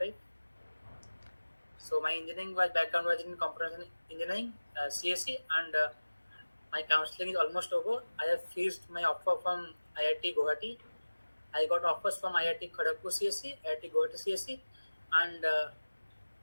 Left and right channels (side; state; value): both; inverted; correlation -1.00